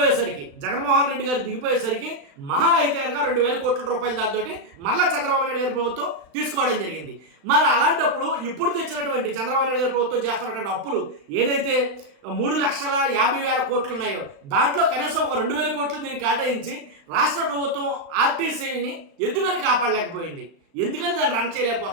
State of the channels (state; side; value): late; left; 35 ms